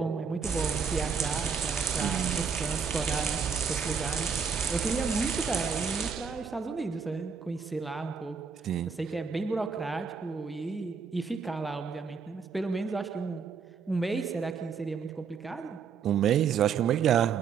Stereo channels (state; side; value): quieter; left; 6.1 dB